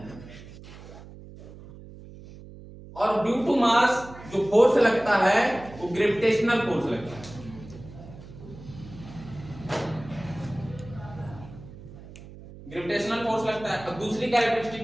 और ड्यू टू मास जो फोर्स लगता है वो ग्रेविटेशनल फोर्स लगता है। ग्रेविटेशनल फोर्स लगता है। अब दूसरी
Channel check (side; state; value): right; noise; hum, 17 dB below the sound